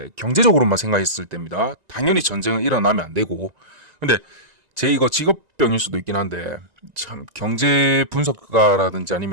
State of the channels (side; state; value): left; late; 1.9 ms